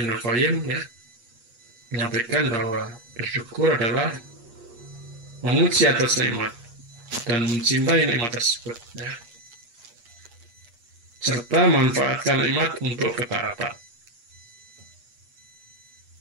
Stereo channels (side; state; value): left; late; 8.4 ms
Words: Qayyim, ya, menyampaikan bahwa bersyukur adalah memuji atas nikmat dan mencintai nikmat tersebut, ya, serta memanfaatkan nikmat untuk ketaatan.